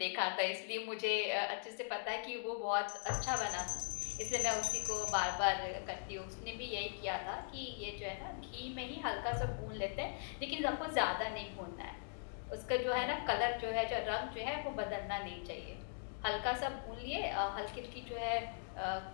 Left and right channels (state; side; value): silent; right; digital silence